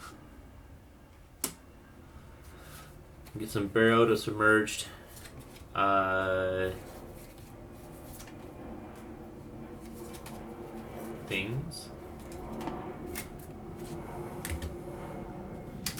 Get some burrowed or submerged things.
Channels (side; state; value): both; identical; correlation 1.00